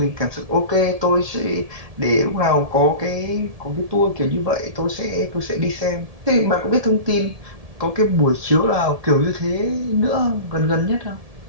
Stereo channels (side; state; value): left; late; 1.7 ms